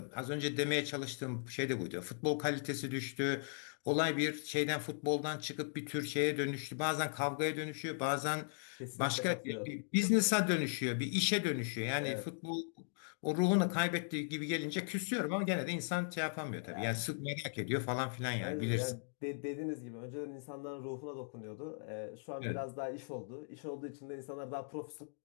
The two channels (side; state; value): right; silent; digital silence